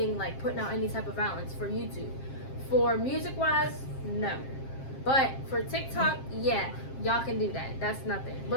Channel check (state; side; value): late; right; 7.5 ms